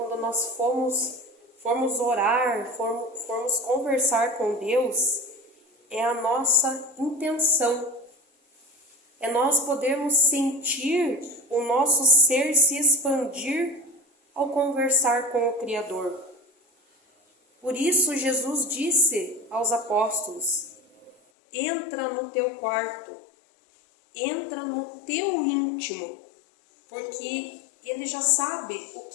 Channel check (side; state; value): right; drops out; at 21.2 s